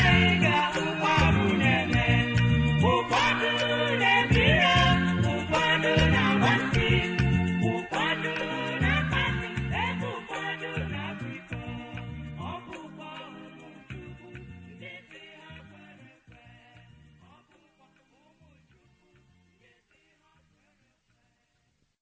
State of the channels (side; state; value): both; identical; correlation 1.00